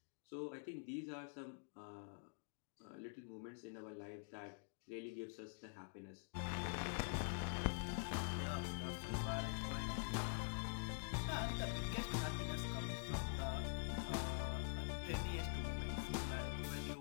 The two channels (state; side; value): silent; right; digital silence